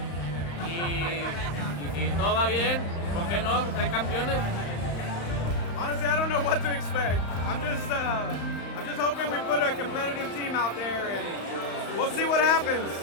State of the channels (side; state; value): right; late; 35 ms